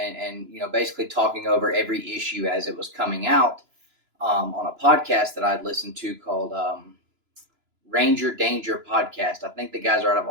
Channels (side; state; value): left; late; 3.0 ms